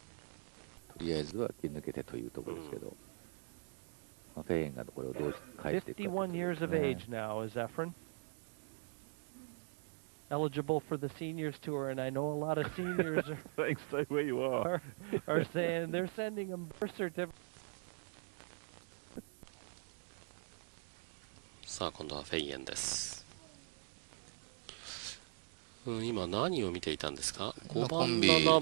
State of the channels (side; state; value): left; silent; 51 dB below the other